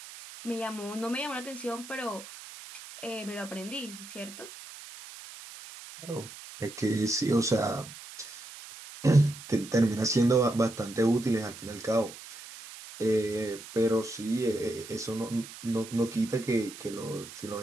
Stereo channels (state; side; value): noise; right; hiss, 15 dB below the sound